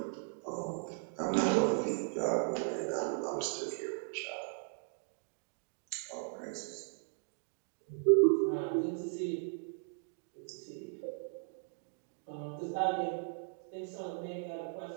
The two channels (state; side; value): silent; left; digital silence